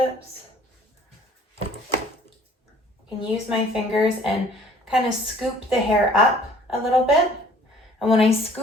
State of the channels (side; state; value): both; normal; correlation 0.54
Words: I can use my fingers and kind of scoop the hair up a little bit. And when I